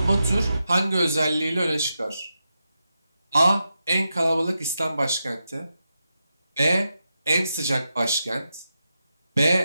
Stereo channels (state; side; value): inverted; both; correlation -0.88